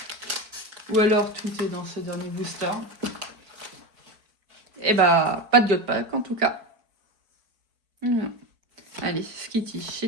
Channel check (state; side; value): late; left; 4.6 ms